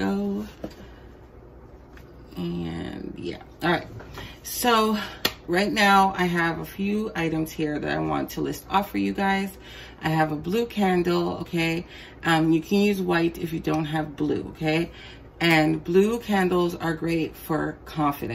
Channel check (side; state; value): both; identical; correlation 1.00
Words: And yeah, all right. So right now I have a few items here that I want to list off for you guys. I have a blue candle, okay? You can use white if you don't have blue, okay? And blue candles are great for